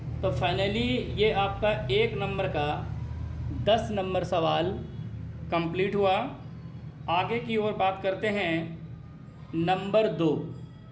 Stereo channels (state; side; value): identical; both; correlation 1.00